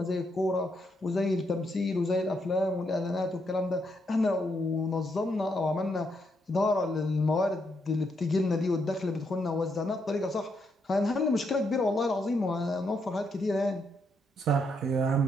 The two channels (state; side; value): normal; both; correlation 0.78